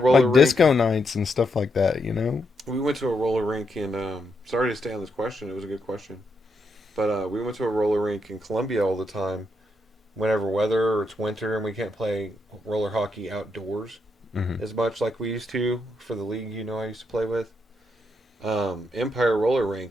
Like rink. disco nights and stuff like that, you know. We went to a roller rink in. Sorry to stay on this question. It was a good question, but we went to a roller rink in Columbia all the time. Whenever weather or it's winter and we can't play roller hockey outdoors Mm-hmm. as much like we used to for the league, I used to play with. Empire Roller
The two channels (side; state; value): both; normal; correlation 0.80